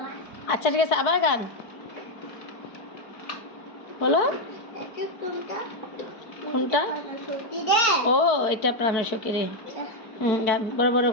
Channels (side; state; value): right; late; 4.6 ms